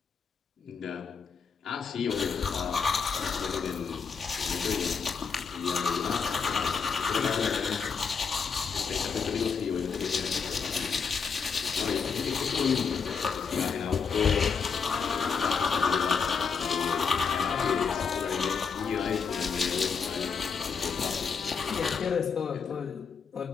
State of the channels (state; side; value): quieter; right; 5.8 dB